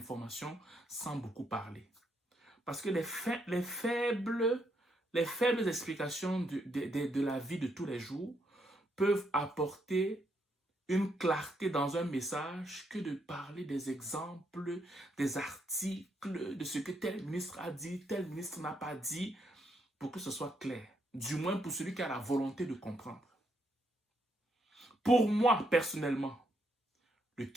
sans beaucoup parler. Parce que les faibles explications de la vie de tous les jours peuvent apporter une clarté dans un message que de parler des exemples, des articles, de ce que tel ministre a dit, tel ministre n'a pas dit, pour que ce soit clair. Du moins pour celui qui a la volonté de comprendre. Pour moi, personnellement, le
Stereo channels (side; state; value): both; normal; correlation 0.76